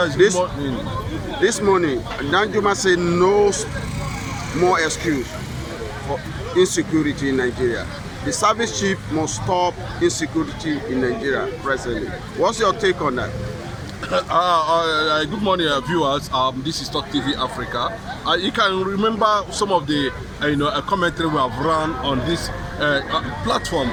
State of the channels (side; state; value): both; identical; correlation 1.00